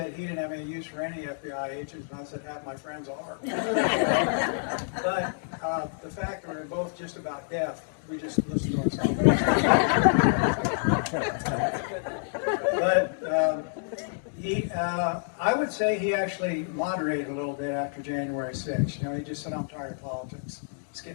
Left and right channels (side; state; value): right; silent; digital silence